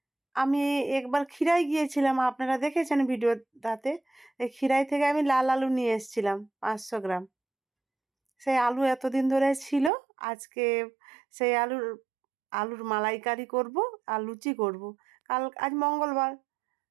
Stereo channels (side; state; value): left; drops out; at 9.9 s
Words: আমি একবার ক্ষীরাই গিয়েছিলাম, আপনারা দেখেছেন ভিডিওটাতে। এই ক্ষীরাই থেকে আমি লাল আলু নিয়ে এসেছিলাম 500 গ্রাম। সেই আলু এতদিন ধরে ছিল, আজকে সেই আলুর মালাইকারি করব আর লুচি করব। আজ মঙ্গলবার,